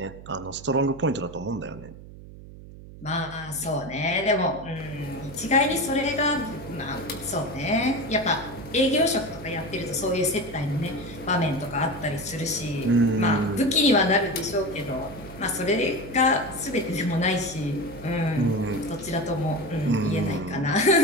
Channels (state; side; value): noise; right; hum, 16 dB below the sound